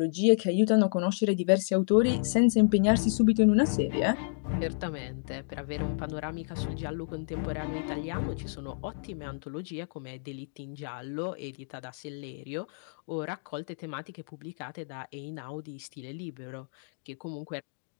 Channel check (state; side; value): silent; right; digital silence